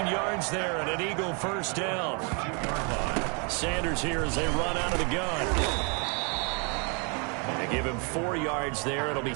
yards there and an Eagle first down. Sanders here as they run out of the gun. They give him 4 yards there. It'll be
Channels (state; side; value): quieter; left; 35.2 dB